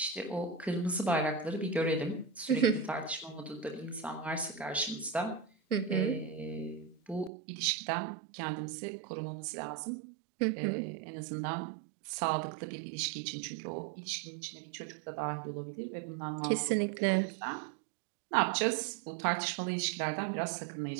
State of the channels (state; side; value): drops out; left; at 7.3 s